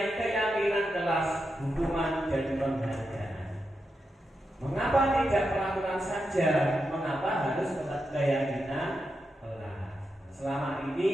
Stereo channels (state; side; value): normal; both; correlation 0.87